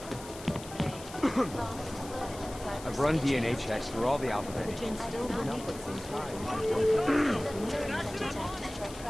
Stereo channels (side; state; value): left; noise; hiss, 16 dB below the sound